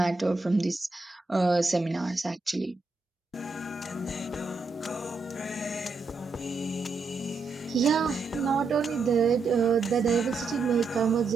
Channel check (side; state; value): left; quieter; 4.1 dB